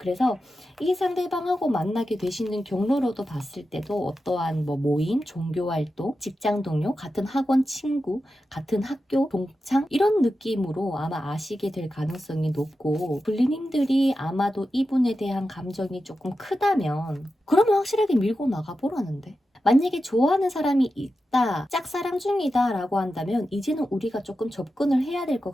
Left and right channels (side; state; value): both; normal; correlation 0.91